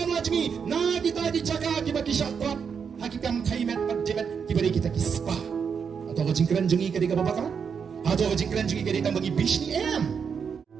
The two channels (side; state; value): left; quieter; 6.5 dB